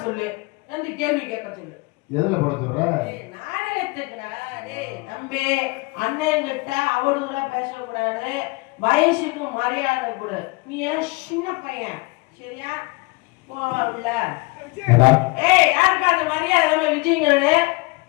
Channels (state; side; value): quieter; right; 26.1 dB